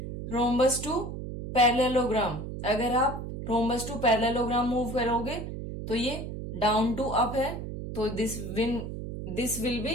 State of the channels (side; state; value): right; noise; hum, 7 dB below the sound